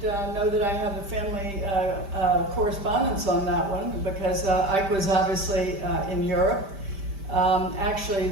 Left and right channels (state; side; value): late; left; 5.1 ms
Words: know that I have a family correspondence on that one because Ike was obviously in Europe. Actually,